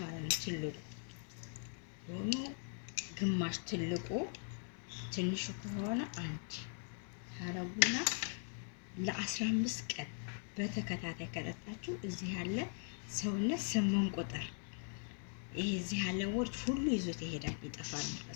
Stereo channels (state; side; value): silent; right; 51 dB below the other